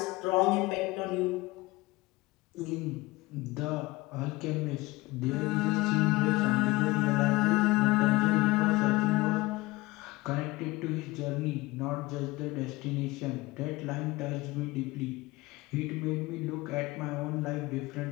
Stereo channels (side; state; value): right; quieter; 20.9 dB